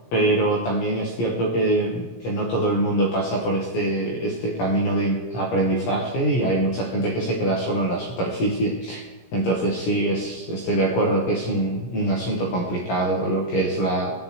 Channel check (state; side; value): late; right; 17 ms